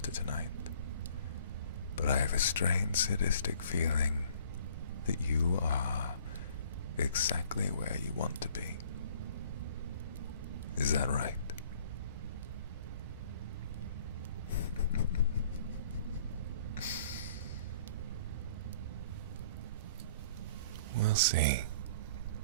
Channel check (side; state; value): both; inverted; correlation -0.54